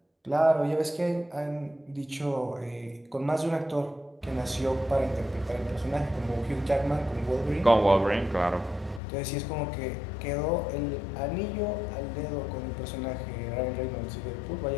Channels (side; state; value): right; drops out; at 9.0 s